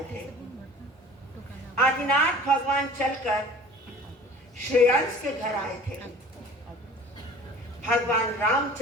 थे। आदिनाथ भगवान चलकर श्रेयांश के घर आए थे। भगवान राम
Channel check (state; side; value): normal; both; correlation 0.45